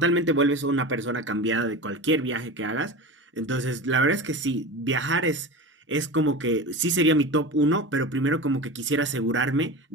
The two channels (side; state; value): both; normal; correlation 0.29